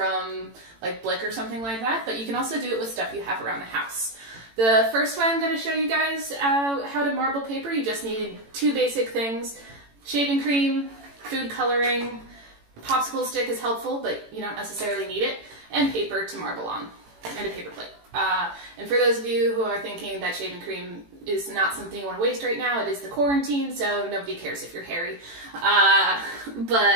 like Blick or something like that, but you can also do it with stuff you have around the house. The first way I'm going to show you guys how to marble paper, you just need two basic things: shaving cream, food coloring, popsicle stick is helpful, but you don't necessarily need it, and paper to marble on, and a paper plate. And for those of you who are thinking that shaving cream is not something you want to waste right now, it is the quarantine, so nobody cares if you're hairy.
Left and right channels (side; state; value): left; late; 18 ms